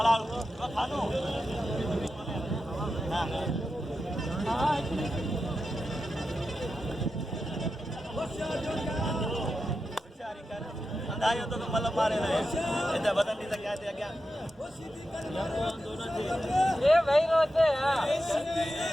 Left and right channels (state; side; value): normal; both; correlation 0.90